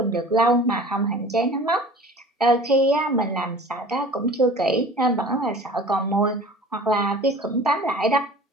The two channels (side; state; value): both; normal; correlation 0.43